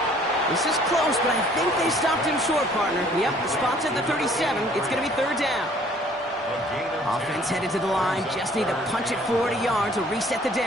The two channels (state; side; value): normal; both; correlation 0.57